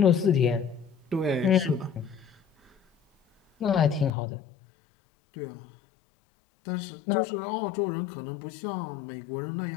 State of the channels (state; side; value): drops out; right; at 4.1 s